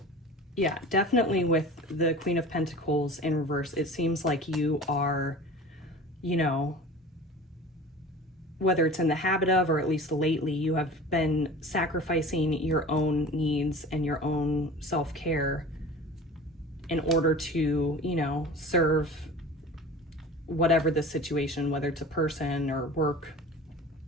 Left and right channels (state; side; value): normal; both; correlation 0.39